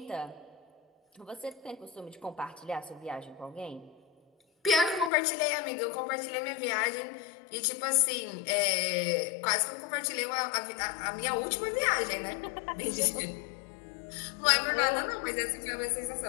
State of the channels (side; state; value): right; drops out; at 5.1 s